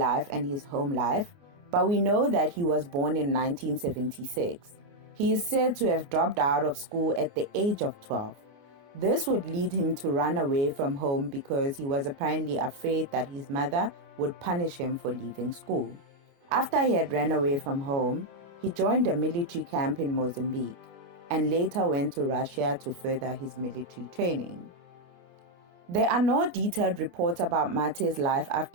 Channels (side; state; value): left; late; 28 ms